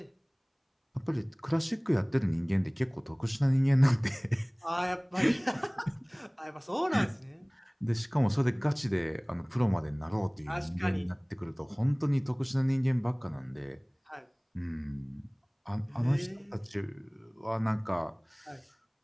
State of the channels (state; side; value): identical; both; correlation 1.00